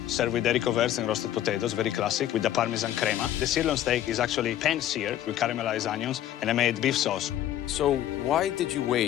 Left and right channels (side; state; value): right; quieter; 12.0 dB